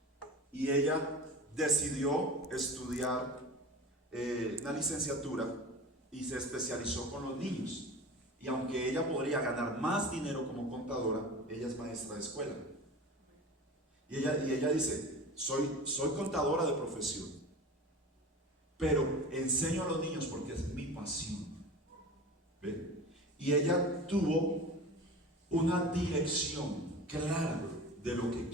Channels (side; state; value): both; normal; correlation 0.34